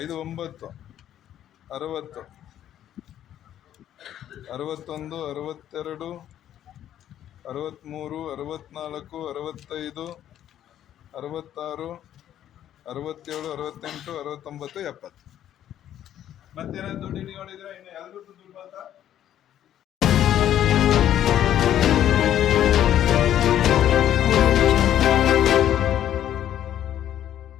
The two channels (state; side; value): quieter; right; 11.2 dB